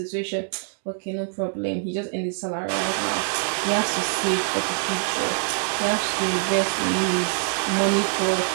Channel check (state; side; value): silent; left; digital silence